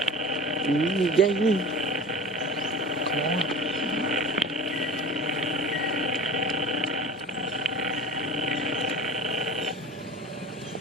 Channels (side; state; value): both; normal; correlation 0.37